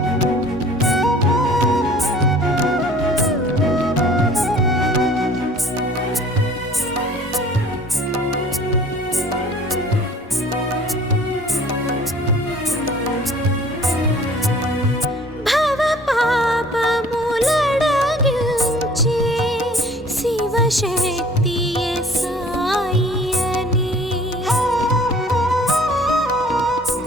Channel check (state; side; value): normal; both; correlation 0.50